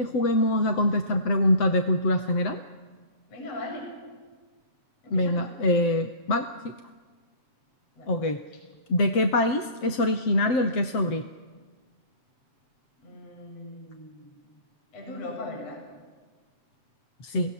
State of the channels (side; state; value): right; late; 7.7 ms